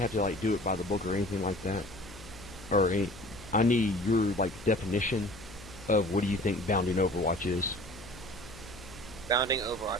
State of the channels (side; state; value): left; noise; hum, 18 dB below the sound